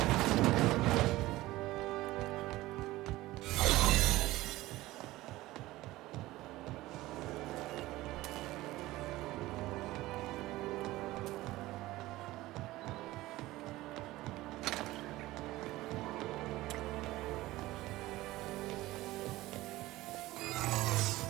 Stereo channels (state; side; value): quieter; left; 17.8 dB